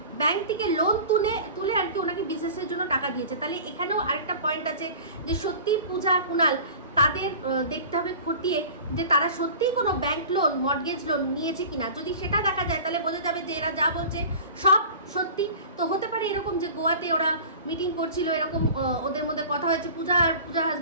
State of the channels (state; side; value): inverted; both; correlation -0.39